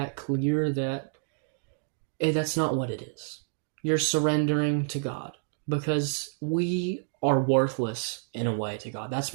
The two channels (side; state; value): left; silent; digital silence